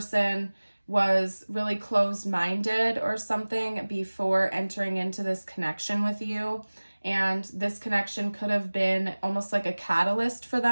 was really closed-minded or something before entering into this connection with you. And this connection could have been almost like a catalyst for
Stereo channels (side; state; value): both; inverted; correlation -1.00